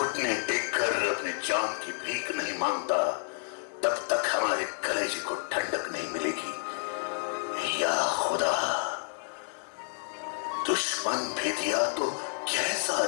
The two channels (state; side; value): silent; right; digital silence